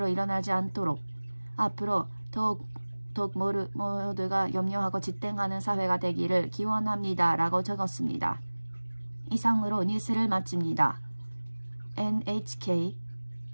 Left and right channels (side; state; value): both; inverted; correlation -1.00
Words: 일어나지 않도록 앞으로 더욱 모두가 염려하고 지탱하는 사회가 되기를 기원합니다 라고 적었습니다. 이상으로 뉴스를 마칩니다. NHK